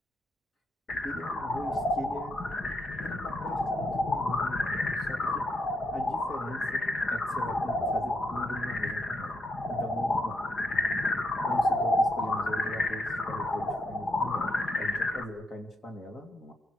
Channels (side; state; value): both; normal; correlation 0.78